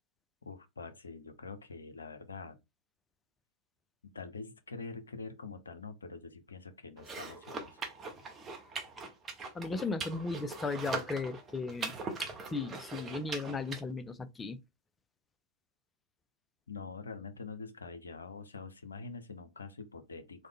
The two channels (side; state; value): both; normal; correlation 0.40